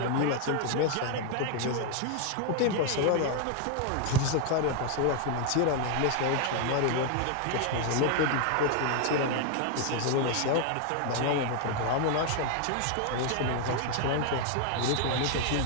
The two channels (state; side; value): different; both; correlation 0.00